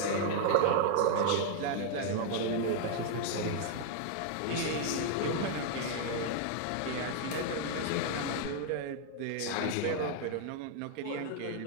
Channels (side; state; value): both; different; correlation 0.00